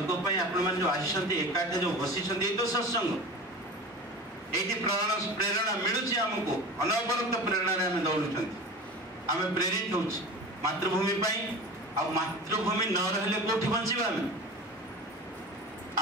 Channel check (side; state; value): both; normal; correlation 0.34